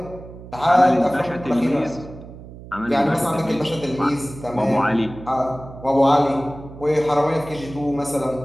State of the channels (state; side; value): noise; right; hum, 16 dB below the sound